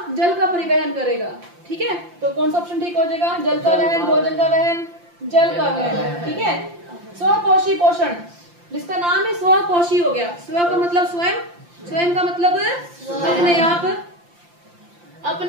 जल का परिवहन करेगा, ठीक है। तो कौन सा ऑप्शन ठीक हो जाएगा? जल का वहन, भोजन का वहन, जल का वहन, ठीक है। स्वपोषी पोषण, जिसका नाम है स्वपोषी हो गया। स्व का मतलब स्वयं, स्वयं का मतलब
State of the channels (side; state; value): left; late; 5.8 ms